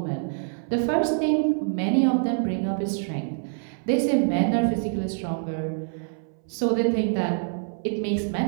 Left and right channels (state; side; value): silent; left; 61 dB below the other